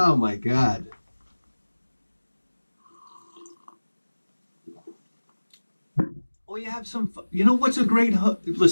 my God. Or you have some, you know what's a great,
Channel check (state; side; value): inverted; both; correlation -1.00